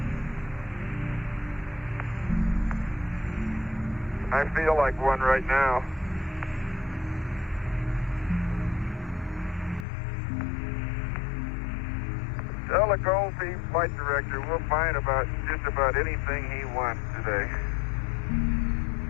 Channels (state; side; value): drops out; right; at 9.9 s